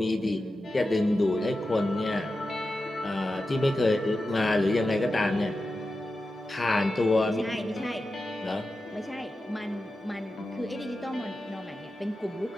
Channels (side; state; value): both; normal; correlation 0.91